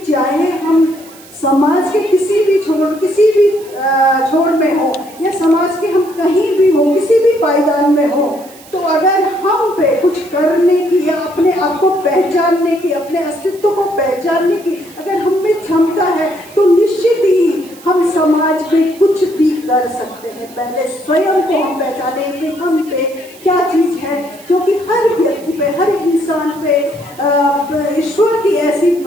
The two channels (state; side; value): noise; right; hiss, 22 dB below the sound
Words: चाहे हम समाज के किसी भी छोर में हो या समाज के हम कहीं भी हो, किसी भी पायदान में हो, तो अगर हम पे कुछ करने की या अपने आप को पहचानने की, अपने अस्तित्व को पहचानने की अगर हम में क्षमता है, तो निश्चित ही हम समाज में कुछ भी कर सकते हैं। पहले स्वयं को हम पहचाने कि हम पे क्या चीज है, क्योंकि हर व्यक्ति पे, हर इंसान पे ईश्वर की ऐसी